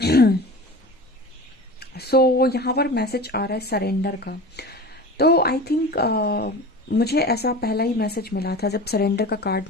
सो यहाँ पर मैसेज आ रहा है सरेंडर का। तो आई थिंक मुझे ऐसा पहला ही मैसेज मिला था जब सरेंडर का कार्ड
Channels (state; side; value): normal; both; correlation 0.35